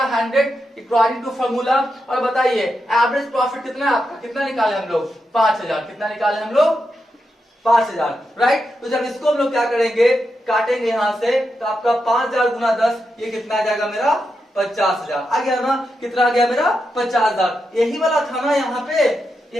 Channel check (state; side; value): normal; both; correlation 0.86